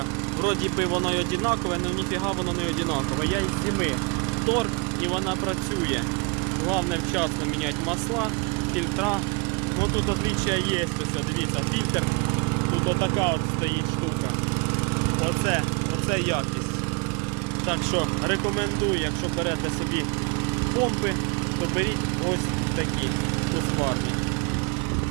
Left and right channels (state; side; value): quieter; left; 30.4 dB